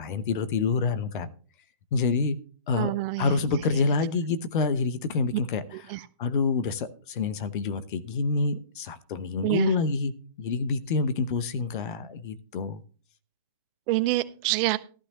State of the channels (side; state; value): both; inverted; correlation -0.36